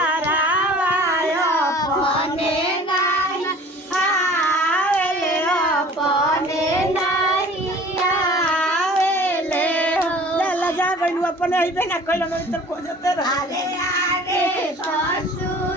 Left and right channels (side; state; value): both; normal; correlation 0.47